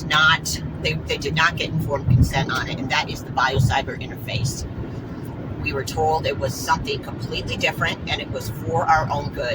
not, they did not get informed consent on it, and that is the biocyber interface. We were told it was something completely different and it was for our own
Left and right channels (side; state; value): both; identical; correlation 1.00